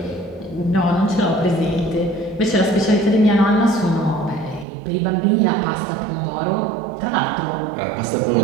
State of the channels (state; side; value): drops out; left; at 4.7 s